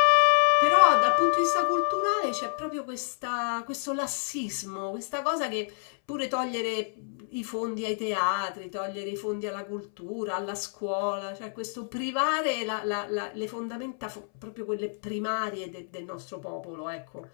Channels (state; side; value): silent; right; 59 dB below the other